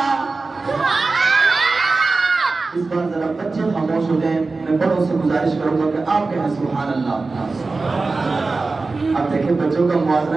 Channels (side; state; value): left; quieter; 3.8 dB